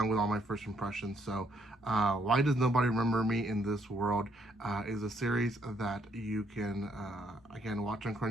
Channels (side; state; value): both; normal; correlation 0.71